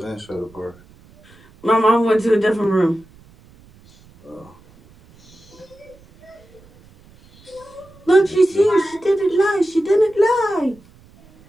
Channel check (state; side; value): noise; right; rumble, 27 dB below the sound